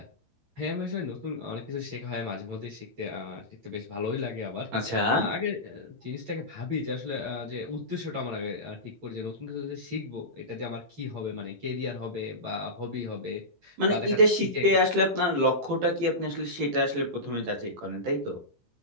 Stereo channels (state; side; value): late; left; 18 ms